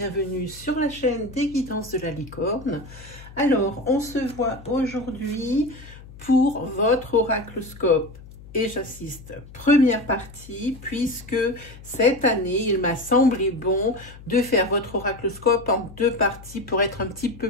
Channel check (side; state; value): left; noise; hum, 18 dB below the sound